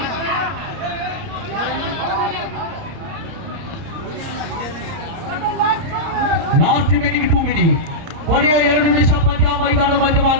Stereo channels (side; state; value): left; late; 30 ms